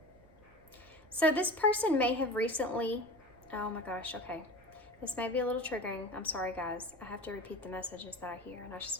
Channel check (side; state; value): right; noise; rumble, 26 dB below the sound